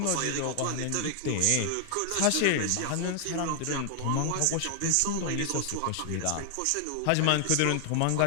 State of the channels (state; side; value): different; both; correlation 0.00